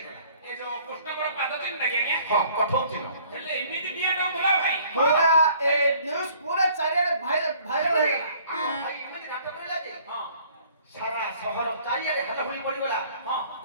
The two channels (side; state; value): both; inverted; correlation -0.57